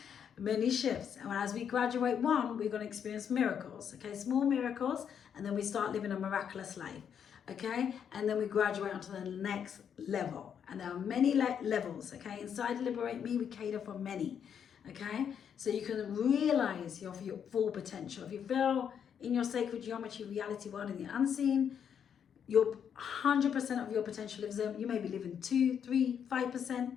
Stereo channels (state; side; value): quieter; right; 8.0 dB